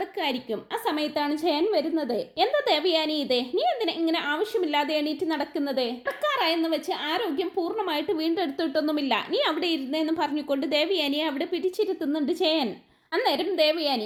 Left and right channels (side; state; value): both; identical; correlation 1.00